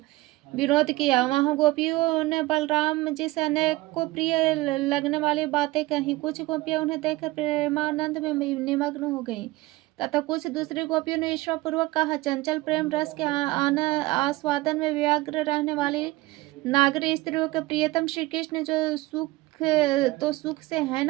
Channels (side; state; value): left; quieter; 19.7 dB